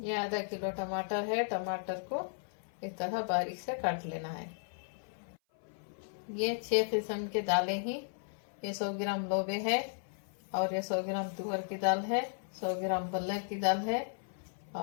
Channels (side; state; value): right; silent; 54 dB below the other